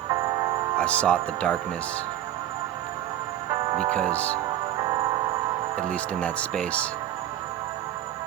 I sought the darkness because, at least in that space,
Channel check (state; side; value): quieter; left; 12.2 dB